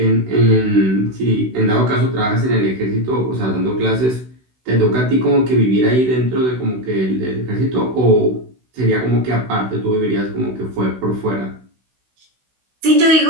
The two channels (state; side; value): late; left; 16 ms